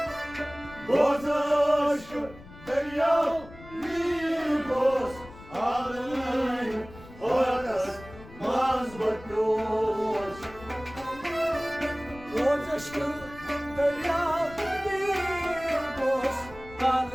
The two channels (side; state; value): left; noise; rumble, 18 dB below the sound